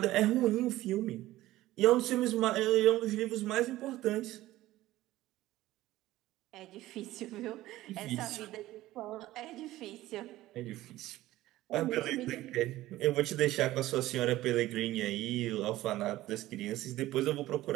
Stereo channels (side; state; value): left; quieter; 16.1 dB